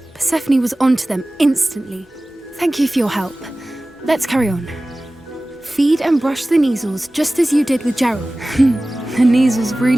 Persephone was onto them instantly. Thank you for your help. Let's carry on. Feed and brush the Neasels just as you did with Gerald. The Neasels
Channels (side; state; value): both; normal; correlation 0.97